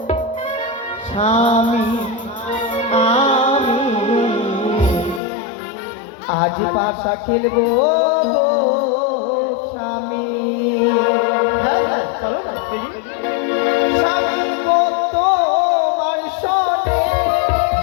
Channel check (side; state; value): right; drops out; at 5.2 s